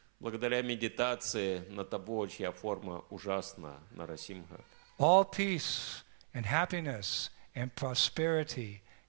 Благодаря медитации на того, чья форма ужасна, Нарасимха, all peace and happiness and prosperity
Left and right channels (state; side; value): silent; left; 52 dB below the other